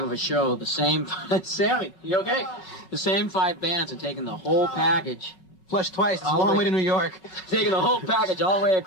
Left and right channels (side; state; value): right; late; 5.3 ms